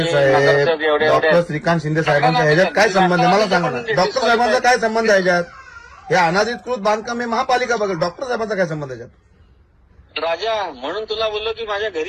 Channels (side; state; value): both; identical; correlation 1.00